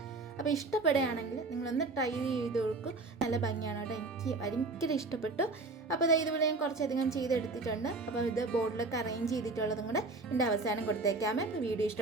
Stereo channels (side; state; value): left; quieter; 3.5 dB